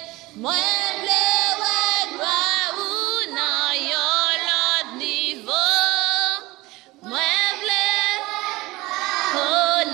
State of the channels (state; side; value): quieter; left; 20.6 dB